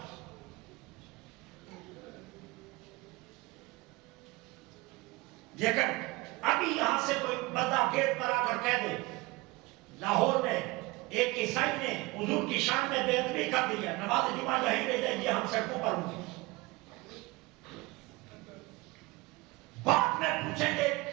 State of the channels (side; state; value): left; quieter; 22.6 dB